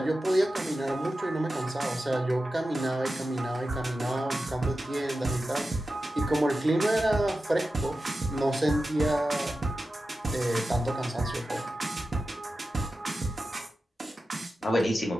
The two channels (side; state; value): both; normal; correlation 0.93